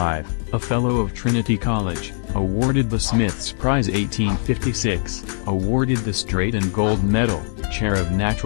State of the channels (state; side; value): silent; right; digital silence